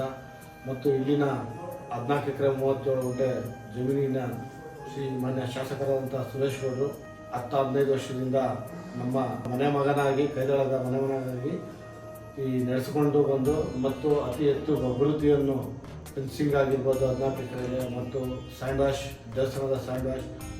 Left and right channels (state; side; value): identical; both; correlation 1.00